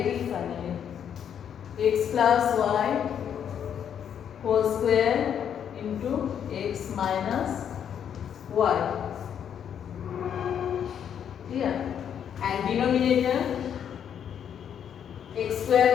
finally? X plus y whole square into x minus y. Here, and denominator x square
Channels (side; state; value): right; quieter; 8.7 dB